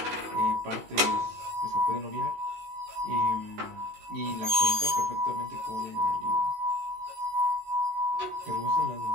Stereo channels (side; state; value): left; late; 18 ms